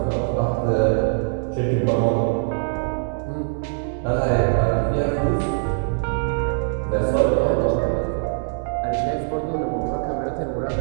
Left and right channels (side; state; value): left; silent; digital silence